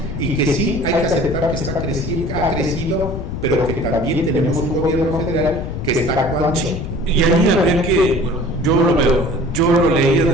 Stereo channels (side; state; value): left; noise; rumble, 5 dB below the sound